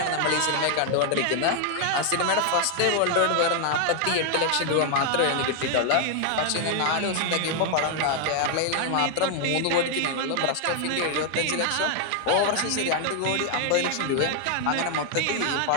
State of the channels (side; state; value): both; different; correlation 0.00